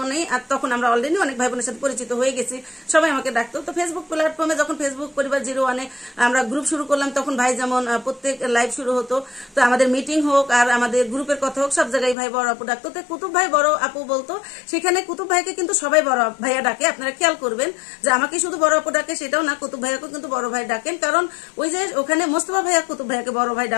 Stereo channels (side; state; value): right; drops out; at 12.2 s